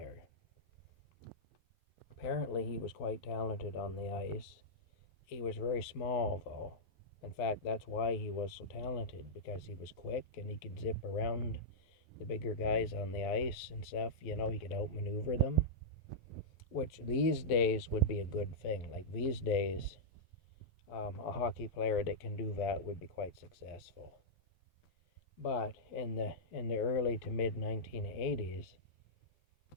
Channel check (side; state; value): right; late; 11 ms